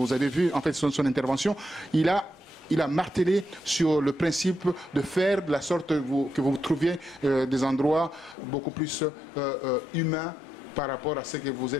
avez vu en fait son intervention, il a martelé sur le principe de faire de la sorte que vous trouviez des endroits beaucoup plus humains par rapport à ce que vous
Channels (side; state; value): right; drops out; at 8.3 s